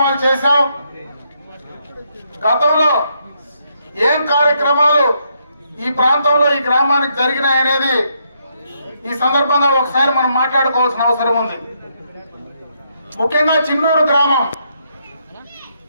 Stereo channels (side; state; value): both; inverted; correlation -0.76